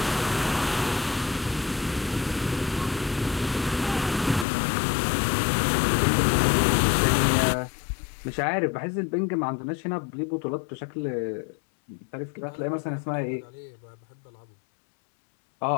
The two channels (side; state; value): right; drops out; at 4.5 s